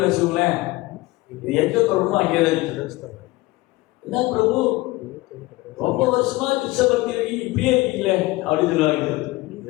வச்சுக்கோங்களேன், இது எங்க தொடரணும் அங்கேதான். என்ன பிரபு, ரொம்ப வருஷமா கிருஷ்ண பக்தி இருக்கீங்க, இப்படியே இருக்கீங்களே அப்படின்னு சொல்லுவாங்க.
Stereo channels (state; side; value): quieter; right; 20.4 dB